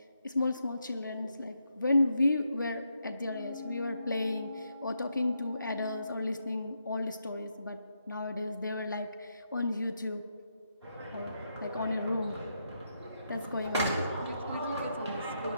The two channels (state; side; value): inverted; both; correlation -0.81